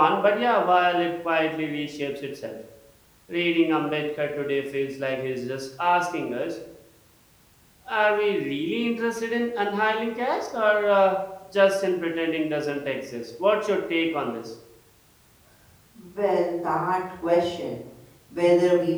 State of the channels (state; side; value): identical; both; correlation 1.00